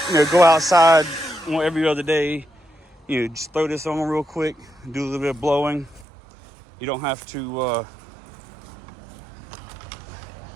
go outside every other day, just throw this on real quick, do a little bit of blowing. You don't have to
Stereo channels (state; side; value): drops out; left; at 6.1 s